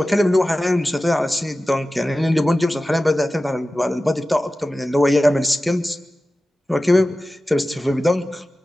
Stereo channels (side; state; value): both; normal; correlation 0.95